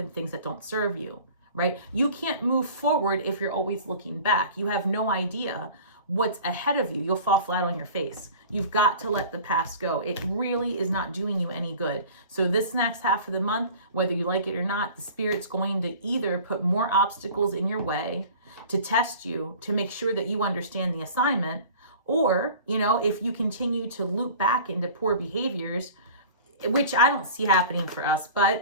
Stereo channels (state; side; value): inverted; both; correlation -0.43